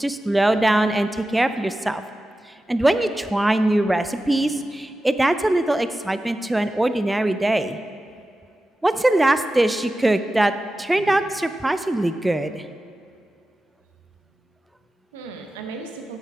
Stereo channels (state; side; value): normal; both; correlation 0.94